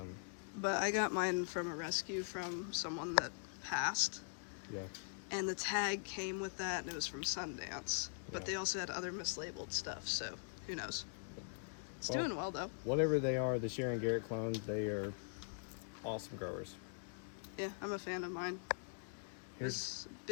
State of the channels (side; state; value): right; silent; digital silence